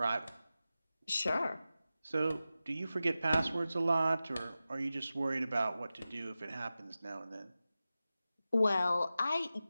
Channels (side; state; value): both; inverted; correlation -0.94